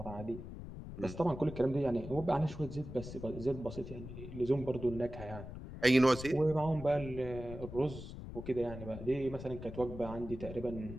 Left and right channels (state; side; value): noise; left; rumble, 10 dB below the sound